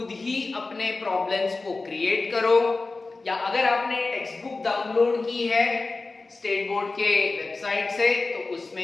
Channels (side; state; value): right; quieter; 3.6 dB